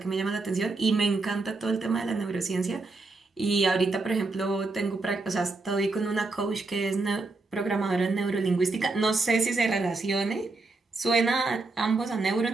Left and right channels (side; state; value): left; quieter; 3.5 dB